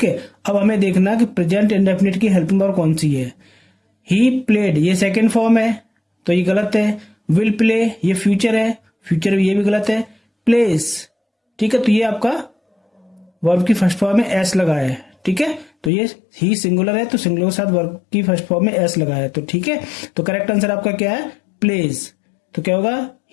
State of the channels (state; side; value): drops out; right; at 15.9 s